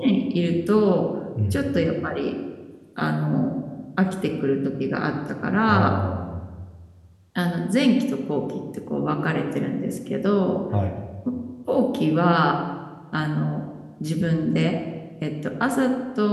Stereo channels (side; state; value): both; identical; correlation 1.00